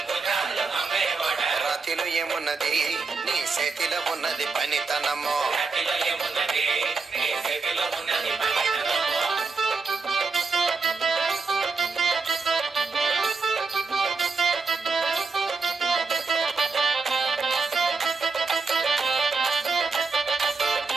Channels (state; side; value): quieter; left; 4.4 dB